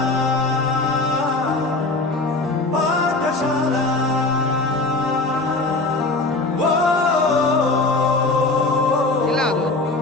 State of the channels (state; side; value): quieter; right; 3.2 dB